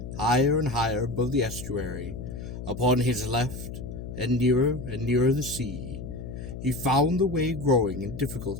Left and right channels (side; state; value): left; noise; hum, 9 dB below the sound